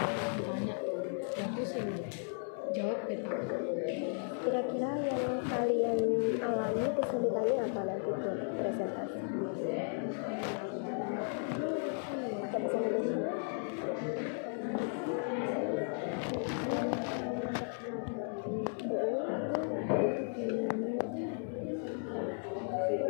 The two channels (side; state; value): right; silent; 54 dB below the other